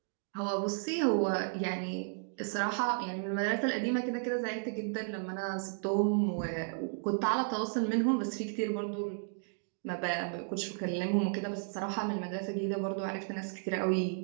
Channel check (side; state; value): left; silent; digital silence